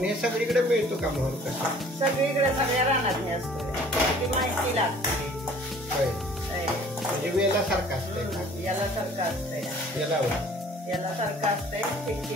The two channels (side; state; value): both; normal; correlation 0.52